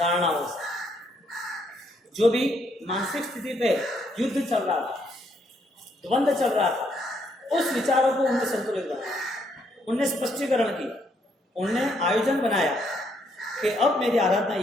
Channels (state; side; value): normal; both; correlation 0.72